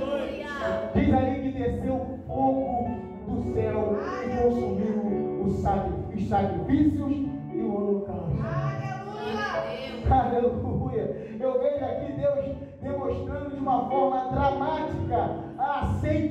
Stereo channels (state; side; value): identical; both; correlation 1.00